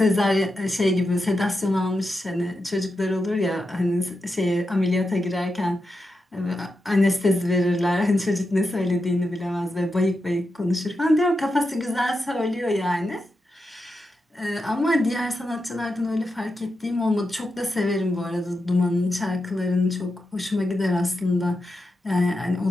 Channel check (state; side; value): normal; both; correlation 0.88